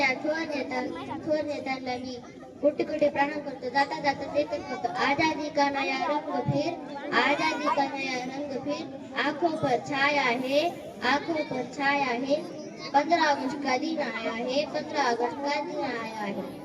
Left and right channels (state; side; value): identical; both; correlation 1.00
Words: थोर नेत्यांना मी कोटी कोटी प्रणाम करतो. जाता जाता तेच होतं, आजादी का नया रंग फिर, आजादी का नया रंग फिर, आंखों पर छाया है, आंखों पर छाया है, 15 अगस्त का दिन आया है, 15 अगस्त का दिन आया है।